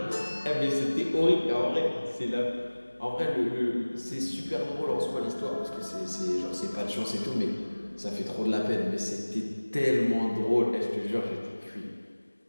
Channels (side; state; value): both; inverted; correlation -1.00